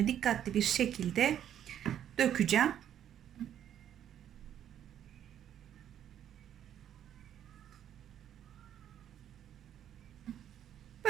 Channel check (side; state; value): left; quieter; 10.2 dB